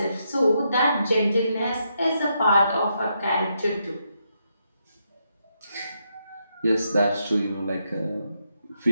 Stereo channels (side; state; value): both; inverted; correlation -0.80